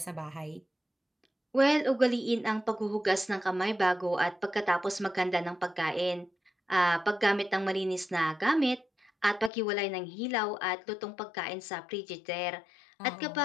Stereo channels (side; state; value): right; drops out; at 9.5 s